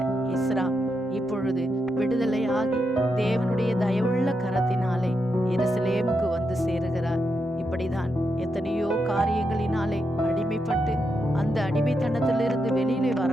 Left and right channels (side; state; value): both; normal; correlation 0.84